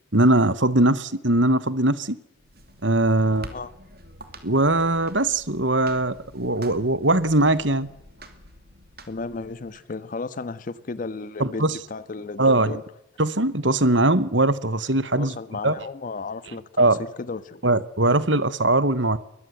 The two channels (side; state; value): both; normal; correlation 0.10